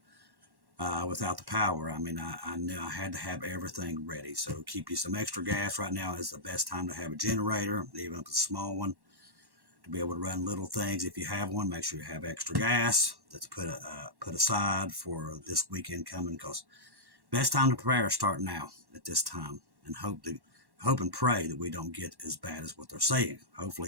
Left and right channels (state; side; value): late; left; 1.1 ms